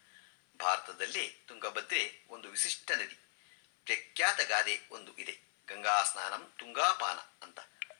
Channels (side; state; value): right; silent; 52 dB below the other